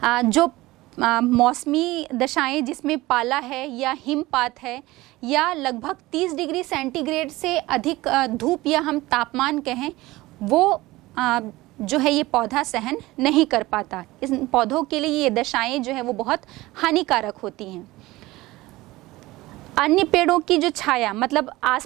जो मौसमी दशाएं जिसमें पाला है या हिमपात है या लगभग 30 डिग्री सेंटीग्रेड से अधिक धूप या हम तापमान कहें, वो जो है ये पौधा सहन नहीं कर पाता। इस पौधों के लिए ये दशाएं जो है वो बहुत हानिकारक होती हैं। अन्य पेड़ों की जो छाया, मतलब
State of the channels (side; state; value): left; quieter; 19.2 dB